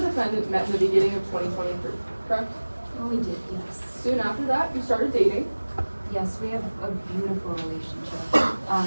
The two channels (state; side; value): inverted; both; correlation -1.00